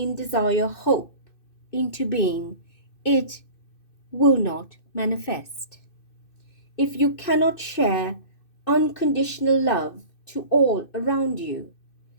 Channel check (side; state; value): right; late; 2.6 ms